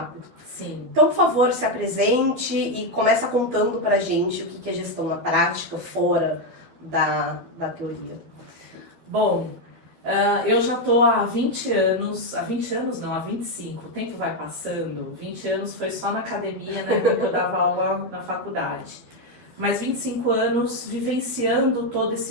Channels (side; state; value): left; late; 12 ms